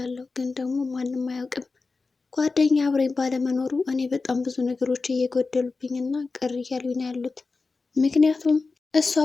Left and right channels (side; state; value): right; quieter; 4.0 dB